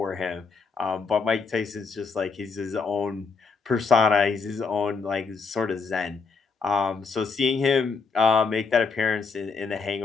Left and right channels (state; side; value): quieter; right; 4.9 dB